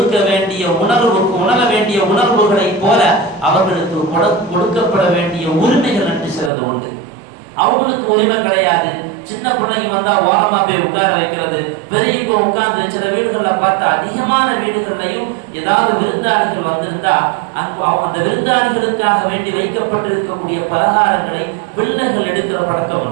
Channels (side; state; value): left; drops out; at 6.5 s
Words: வேண்டிய உணர வேண்டிய உணர்வுகளைப் போல அவர்களுக்கு கொடுக்கப்பட வேண்டிய உரிமைகள் என்று சிலது உண்டு. அவங்களுக்கு உரிமை கிடையாது. சின்ன பிள்ளைங்க வந்தா ஓரமா போய் உட்கார வைக்கிறது, பெரியவங்க உட்கார்ந்து, சில வீடுகள்ல பார்த்தா அதிகமான வீடுகள்லையும் ஏதாவது விருந்தாளிகள் வந்திருந்தா அந்த விருந்தாளிகளுக்காக வேண்டி வைக்கப்பட்டிருக்கக்கூடிய பலகாரங்களை பிள்ளைகள் எடுக்கிற பழக்கம்